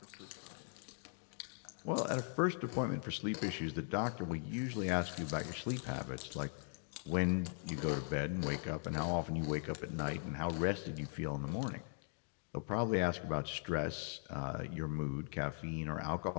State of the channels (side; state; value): right; silent; 51 dB below the other